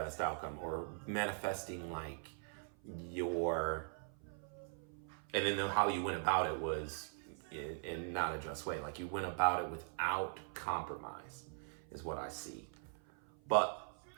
outcome, or manifesting like and then how you went about it was in not a just way. Like you went about it without compromise is what I see. But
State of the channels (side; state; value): left; silent; 50 dB below the other